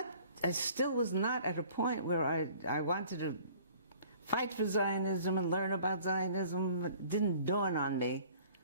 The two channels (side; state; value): both; inverted; correlation -0.52